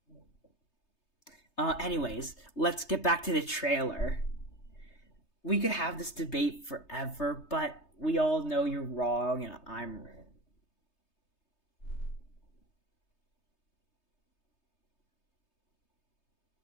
Anyways, let's get back to the trailer. We could have this debate forever, but we all know you're wrong, and I'm.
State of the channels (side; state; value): right; late; 3.3 ms